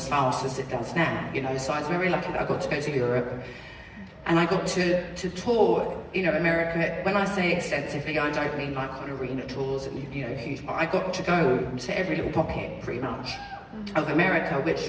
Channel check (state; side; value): identical; both; correlation 1.00